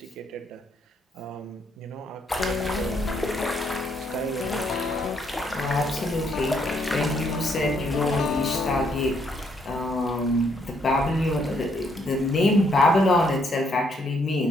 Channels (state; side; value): normal; both; correlation 0.71